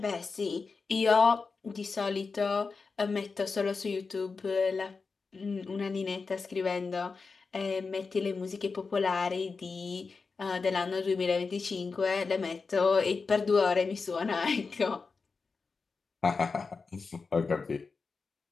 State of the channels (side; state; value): right; quieter; 4.6 dB